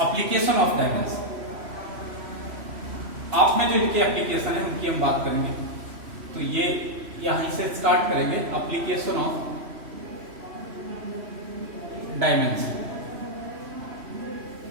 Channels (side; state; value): left; late; 3.0 ms